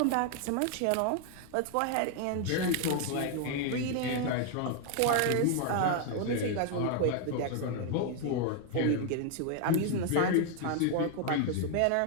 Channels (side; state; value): both; different; correlation 0.01